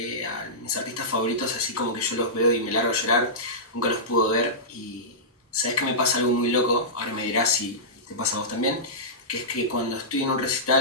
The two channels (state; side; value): normal; both; correlation -0.16